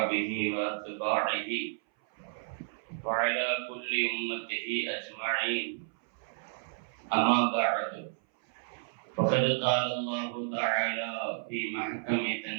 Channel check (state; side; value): silent; left; 57 dB below the other